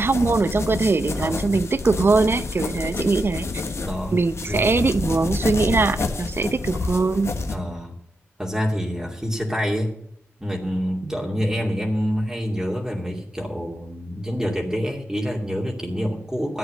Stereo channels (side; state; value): both; normal; correlation 0.86